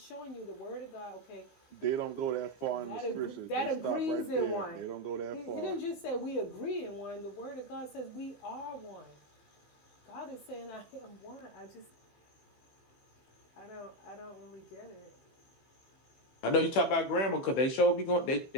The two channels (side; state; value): right; late; 15 ms